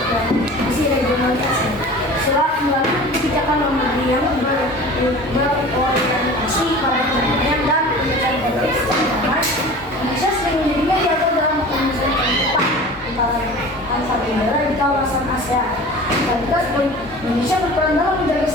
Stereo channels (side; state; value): both; normal; correlation 0.39